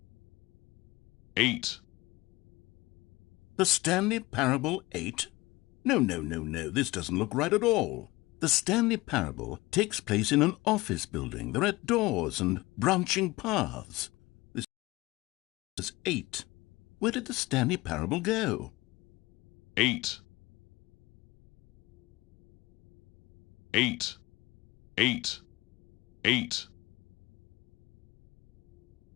Eight. The Stanley Parable 8? No, this doesn't look right at all. The Stanley Parable takes place in an office building. There are doors and branching paths. This is 8. Where did the Stanley Parable go? Eight. Eight. Eight. Eight.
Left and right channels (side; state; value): right; quieter; 20.8 dB